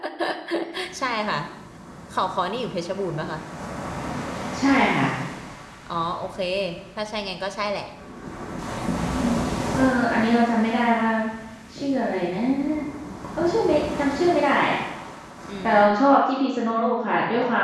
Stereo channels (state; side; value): identical; both; correlation 1.00